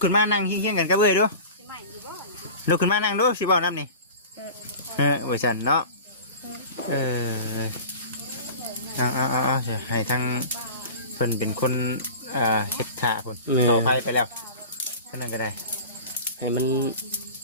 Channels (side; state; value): both; inverted; correlation -0.36